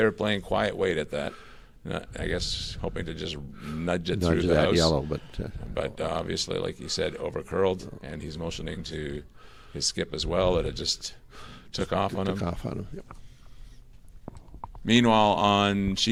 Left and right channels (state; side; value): identical; both; correlation 1.00